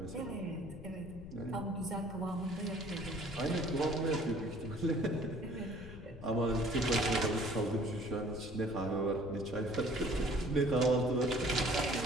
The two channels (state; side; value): noise; left; rumble, 14 dB below the sound